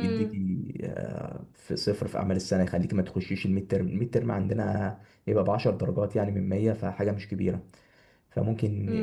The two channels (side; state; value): both; identical; correlation 1.00